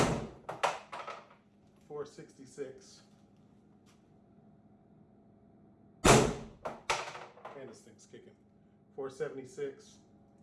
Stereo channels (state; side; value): identical; both; correlation 1.00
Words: 466. And this thing's kicking. 476.